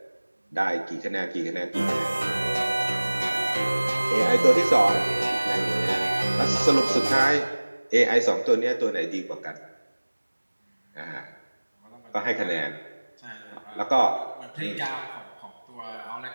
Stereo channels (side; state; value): both; inverted; correlation -1.00